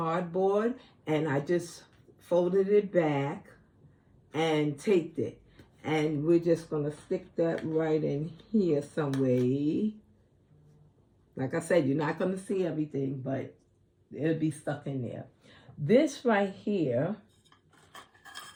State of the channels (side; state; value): both; identical; correlation 1.00